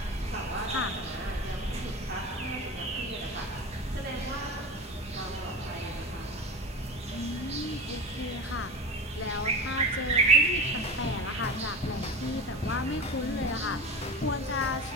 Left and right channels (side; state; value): both; normal; correlation 0.30